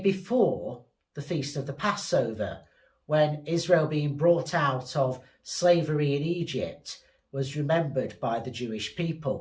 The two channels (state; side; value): identical; both; correlation 1.00